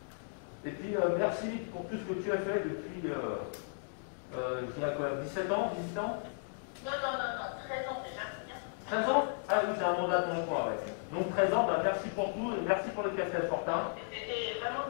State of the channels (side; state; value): right; silent; digital silence